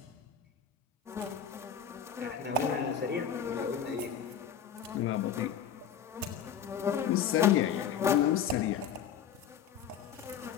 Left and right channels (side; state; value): right; quieter; 8.1 dB